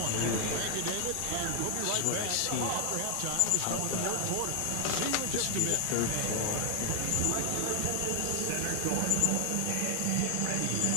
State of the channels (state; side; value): different; both; correlation 0.00